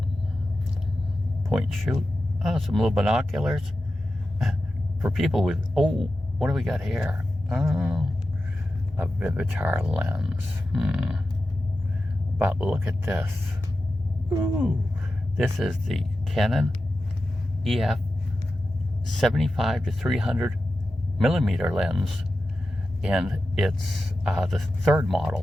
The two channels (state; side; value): normal; both; correlation 0.92